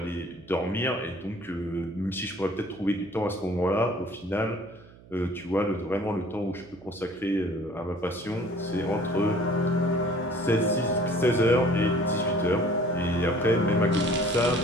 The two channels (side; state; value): right; noise; hum, 22 dB below the sound